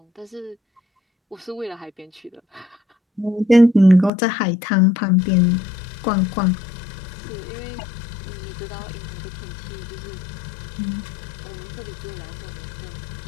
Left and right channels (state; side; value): drops out; right; at 4.1 s